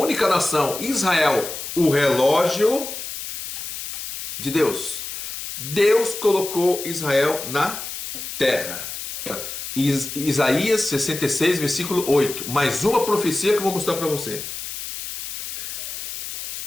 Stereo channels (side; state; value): left; noise; hiss, 7 dB below the sound